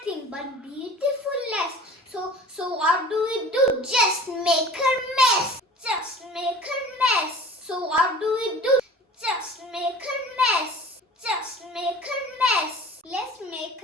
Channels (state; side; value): normal; both; correlation 0.43